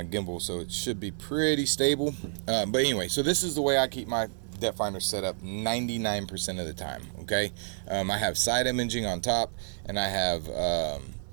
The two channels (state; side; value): silent; left; 57 dB below the other